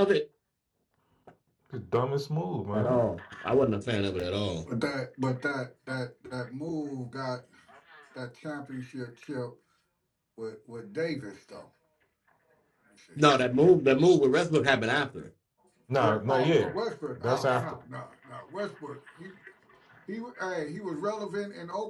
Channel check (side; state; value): both; identical; correlation 1.00